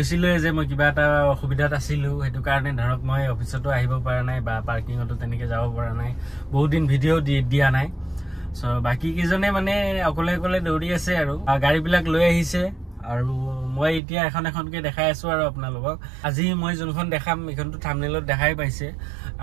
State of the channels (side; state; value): left; drops out; at 14.0 s